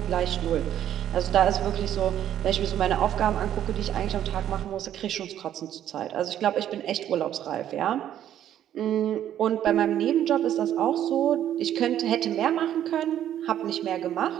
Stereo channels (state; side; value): quieter; left; 11.0 dB